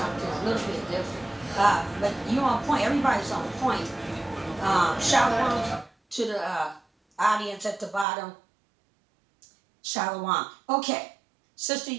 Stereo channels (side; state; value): left; drops out; at 8.1 s